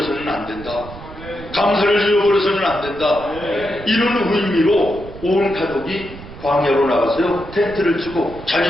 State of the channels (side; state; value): right; noise; rumble, 15 dB below the sound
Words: 안 된다. 감사를 잃어버려서는 안 된다. 이런 의미로 온 가족이 광야로 나가서요 텐트를 치고